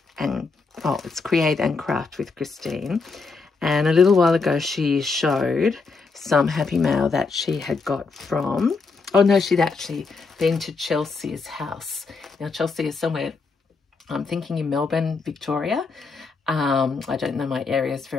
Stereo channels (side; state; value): right; quieter; 4.4 dB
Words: and oh, it's Create and Craft with Christine. And a little while ago, she showed some Happy Mail that she had got from, oh no, she'd actually been to Chelsea's house. Now, Chelsea is somewhere, I'm thinking in Melbourne, Victoria. I don't know my areas